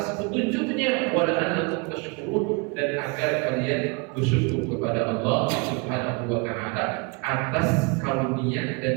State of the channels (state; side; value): quieter; left; 31.2 dB